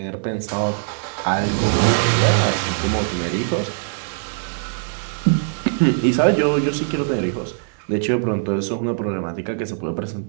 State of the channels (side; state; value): left; silent; digital silence